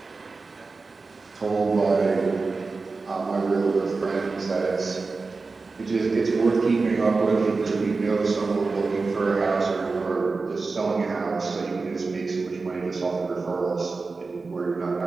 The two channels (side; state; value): left; quieter; 4.1 dB